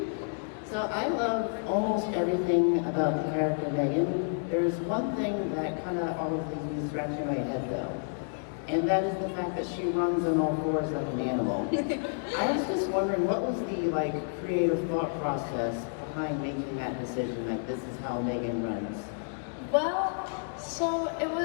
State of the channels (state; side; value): silent; right; digital silence